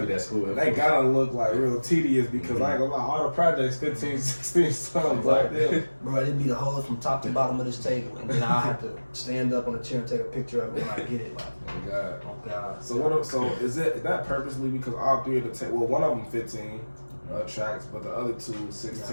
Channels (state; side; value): inverted; both; correlation -1.00